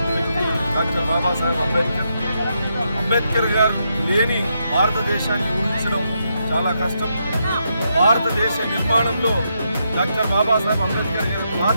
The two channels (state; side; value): inverted; both; correlation -0.80